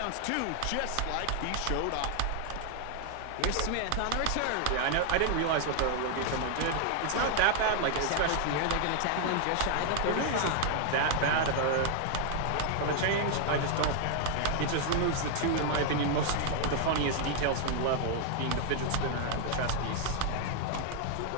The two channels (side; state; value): both; different; correlation 0.00